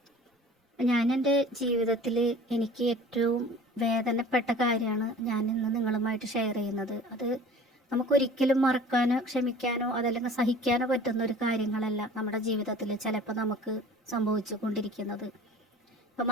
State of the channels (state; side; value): normal; both; correlation 0.45